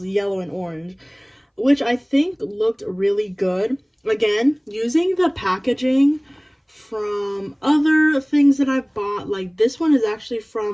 yellow and orange, which I think looked really good. Again, using the packaging from other things that I've bought. Like this one is actually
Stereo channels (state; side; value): identical; both; correlation 1.00